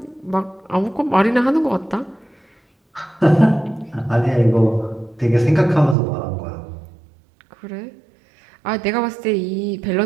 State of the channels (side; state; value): left; drops out; at 6.0 s